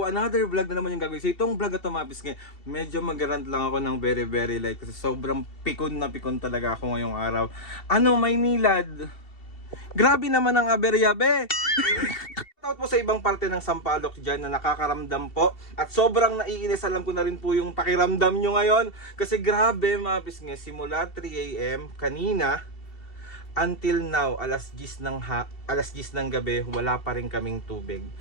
another vlog na naman yung gagawin. So itong vlog na ito mga kapisngin, medyo mag-rant lang ako ng very light kasi sobrang pikon na pikon talaga ako ngayong araw. Ano, Maynilad? Grabe naman ang aberya, be! Shoutout po sa ibang parte ng Sampaloc dyan na nakakaramdam po. At sobrang naiinis, alam ko na rin po yung pakiramdam nyo ngayon. Kasi grabe mga kapisngin, simula 3 AM kanina, until now, alas 10 ng gabi, wala pa rin kaming tubig.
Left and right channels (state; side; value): late; right; 2.7 ms